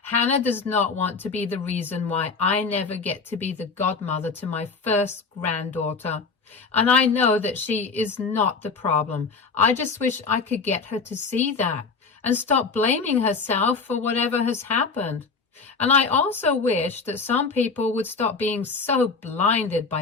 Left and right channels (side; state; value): right; quieter; 4.7 dB